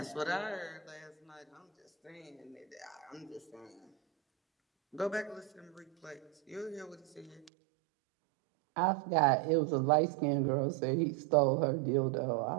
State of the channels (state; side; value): drops out; left; at 7.5 s